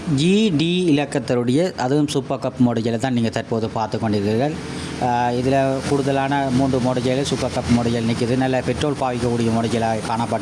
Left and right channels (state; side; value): identical; both; correlation 1.00